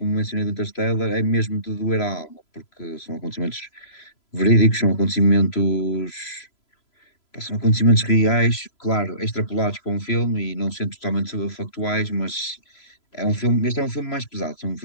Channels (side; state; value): right; late; 3.0 ms